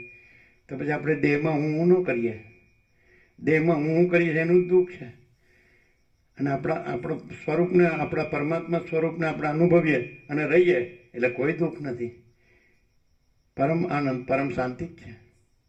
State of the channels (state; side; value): identical; both; correlation 1.00